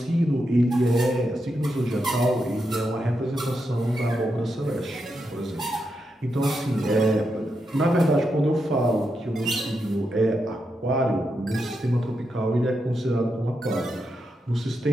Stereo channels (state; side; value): normal; both; correlation 0.85